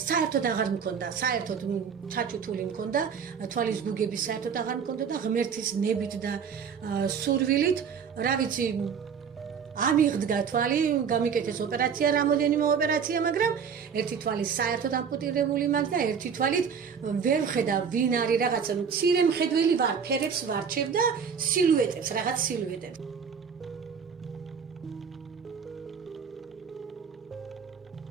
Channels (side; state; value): left; quieter; 6.7 dB